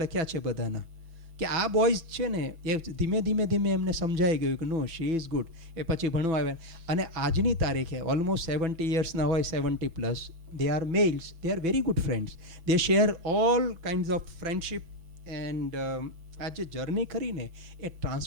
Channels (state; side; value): late; left; 6.0 ms